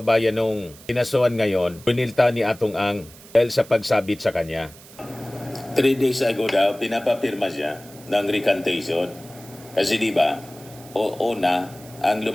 nung kinasuhan ngayon, pinilta ni Atong Ang dahil sa pagsabit sa kanya. 3 days ago daw, pinapapirma siya ng recantation. Kasi di ba, una, ang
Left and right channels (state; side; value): noise; right; hiss, 21 dB below the sound